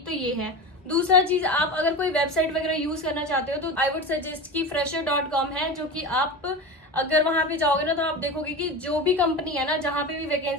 तो ये है। दूसरा चीज, आप अगर कोई वेबसाइट वगैरह यूज करना चाहते हो तो आई वुड सजेस्ट कि fresher.com है, जो कि आप अगर वहां पे जाओगे ना तो आप देखोगे कि जो भी कंपनी है ना, जहां पे भी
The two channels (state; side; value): normal; both; correlation 0.27